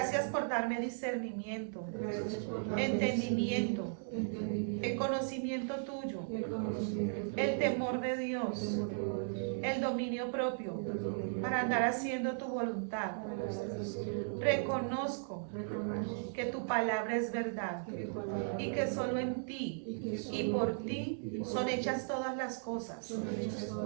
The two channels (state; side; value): silent; left; digital silence